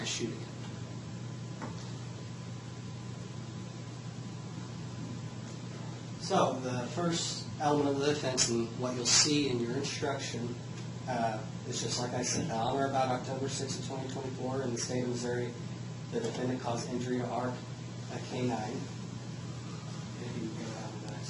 shooting it. So the first element of the offense, and what you'll see in your instruction, is just like I said, on or about October 6th of 2024 in the state of Missouri, the defendant caused injury to Ark, a canine.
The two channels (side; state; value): both; identical; correlation 1.00